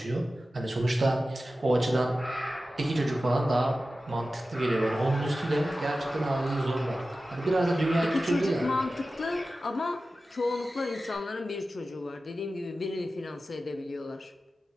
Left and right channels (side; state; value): both; normal; correlation 0.94